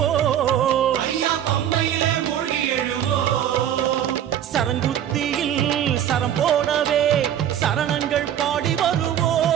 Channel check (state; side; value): quieter; left; 10.4 dB